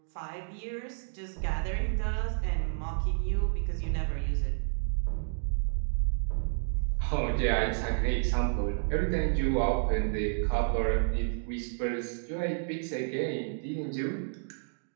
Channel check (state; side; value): silent; left; digital silence